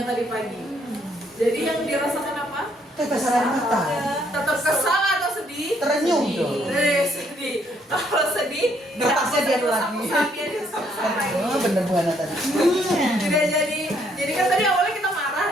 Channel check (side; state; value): both; normal; correlation 0.69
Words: tadi pagi. Jadi yang dirasakan apa? Tetes air mata. Tetap kesal atau sedih? Terenyuh dong. Sedih. Kalau sedih, Napasnya dia lagi. Oh, bener Bu Hana tadi. Tidak jadi kan tadi awalnya kita